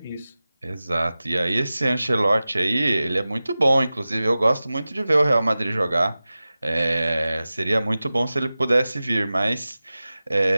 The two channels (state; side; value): inverted; both; correlation -0.96